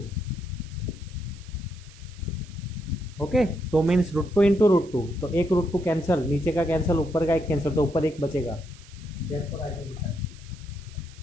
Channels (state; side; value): noise; right; hiss, 23 dB below the sound